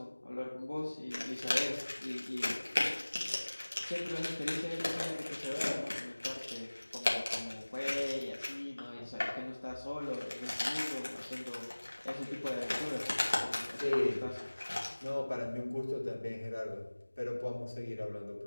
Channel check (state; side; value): inverted; both; correlation -1.00